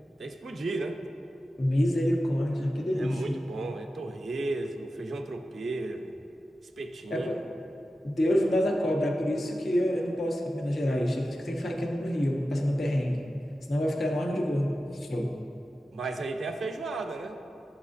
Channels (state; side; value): normal; both; correlation 0.93